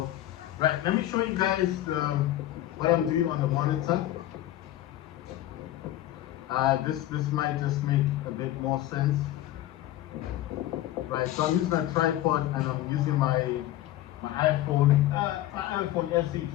Right, let me show you guys what I'm doing on the monitor. This might just make a bit more sense. Right, so I'm using a tripod and I'm using my iPhone SE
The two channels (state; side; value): quieter; right; 14.3 dB